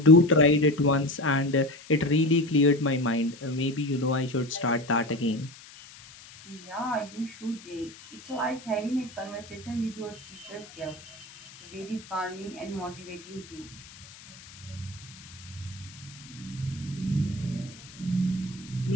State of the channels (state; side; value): noise; left; hiss, 19 dB below the sound